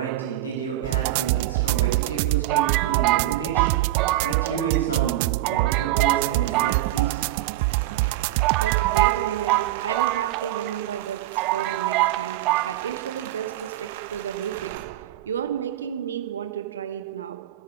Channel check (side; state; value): left; quieter; 14.5 dB